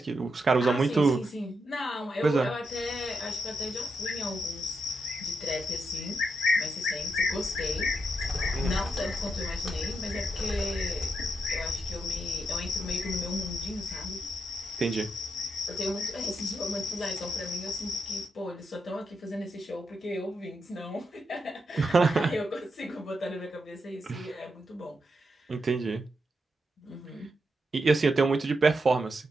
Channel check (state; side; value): normal; both; correlation 0.83